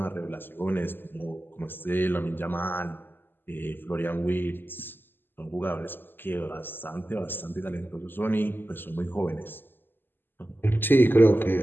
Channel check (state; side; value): late; right; 0.095 ms